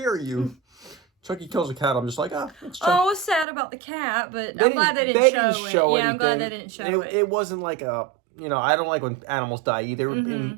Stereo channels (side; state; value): left; drops out; at 3.5 s